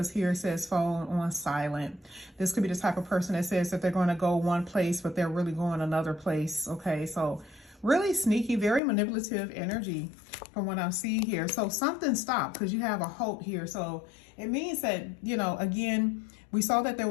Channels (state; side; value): drops out; right; at 8.8 s